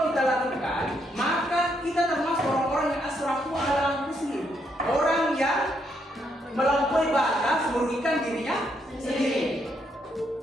kita lakukan, maka kita termasuk orang-orang yang asrafu ala anfusihim, orang yang melampaui batas merugikan dirinya sendiri.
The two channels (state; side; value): normal; both; correlation 0.76